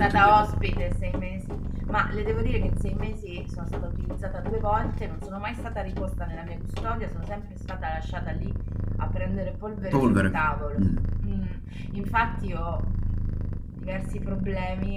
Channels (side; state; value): both; identical; correlation 1.00